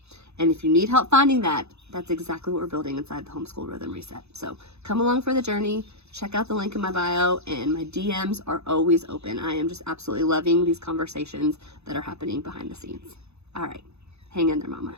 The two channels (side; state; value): left; late; 0.80 ms